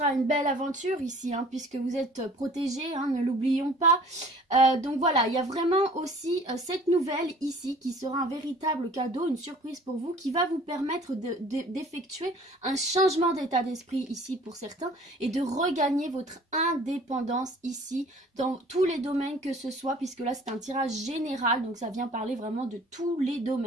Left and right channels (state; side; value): normal; both; correlation 0.50